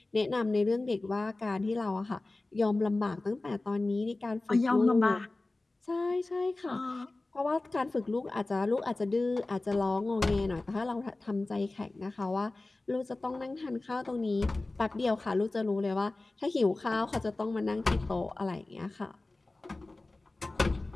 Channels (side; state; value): right; quieter; 3.0 dB